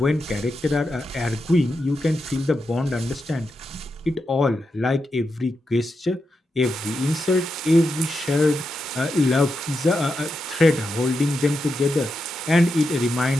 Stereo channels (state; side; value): normal; both; correlation 0.87